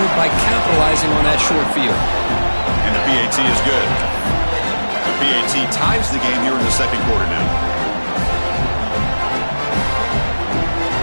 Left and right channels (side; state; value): both; inverted; correlation -1.00